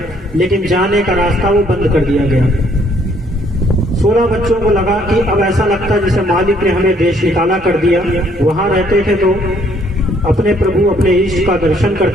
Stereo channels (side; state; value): both; normal; correlation 0.65